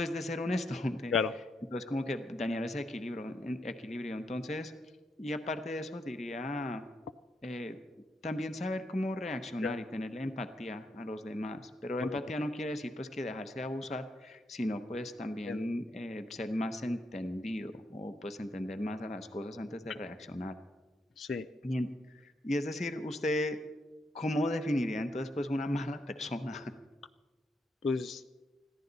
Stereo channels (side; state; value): both; normal; correlation 0.80